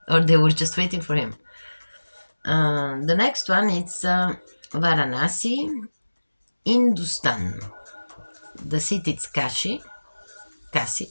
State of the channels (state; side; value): inverted; both; correlation -1.00